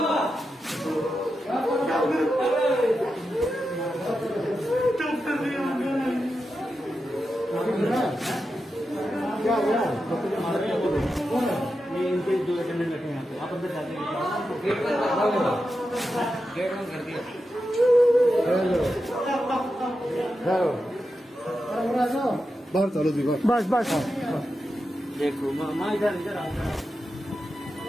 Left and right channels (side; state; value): both; normal; correlation 0.89